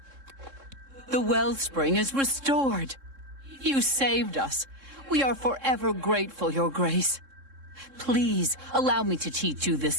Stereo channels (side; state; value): left; late; 3.7 ms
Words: The wellspring is restored. You saved us. We are forever grateful, Your Grace. Please, allow me to teach you this